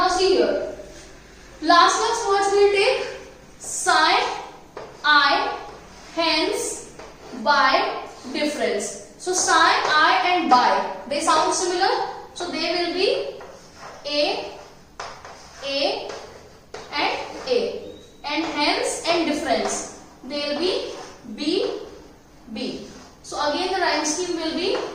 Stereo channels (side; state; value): both; identical; correlation 1.00